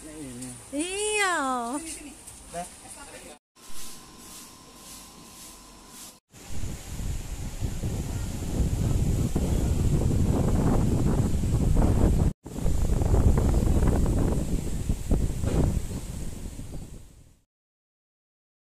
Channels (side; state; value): both; identical; correlation 1.00